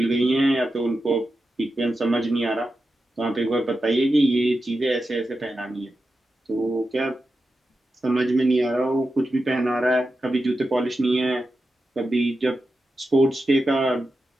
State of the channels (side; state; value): both; normal; correlation 0.90